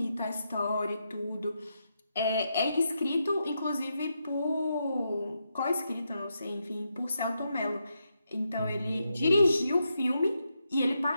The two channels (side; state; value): both; inverted; correlation -0.83